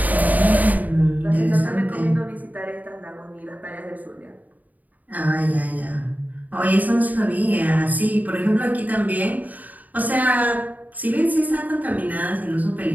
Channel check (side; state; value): left; late; 0.078 ms